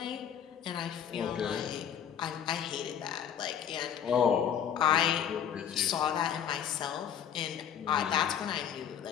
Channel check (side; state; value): right; quieter; 8.9 dB